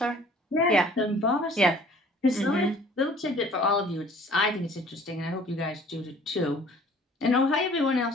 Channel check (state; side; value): normal; both; correlation 0.53